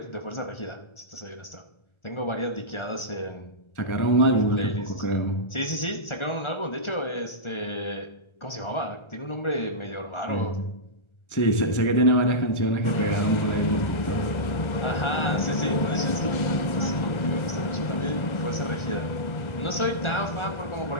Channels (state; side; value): late; right; 1.3 ms